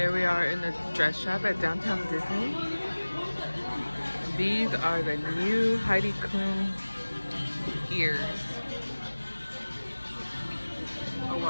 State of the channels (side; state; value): both; inverted; correlation -1.00